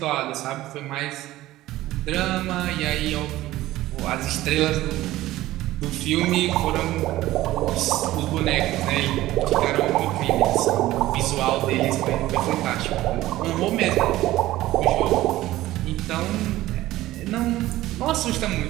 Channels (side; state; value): left; quieter; 16.0 dB